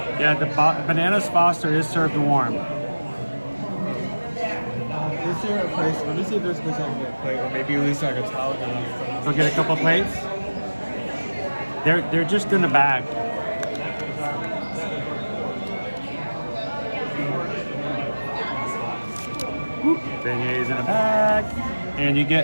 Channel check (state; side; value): inverted; both; correlation -1.00